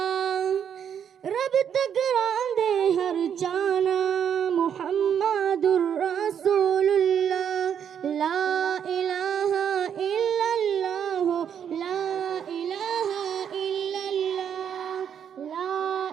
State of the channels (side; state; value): left; quieter; 8.4 dB